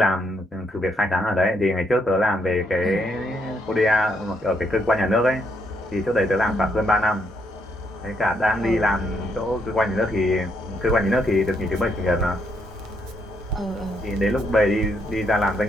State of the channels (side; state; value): both; normal; correlation 0.75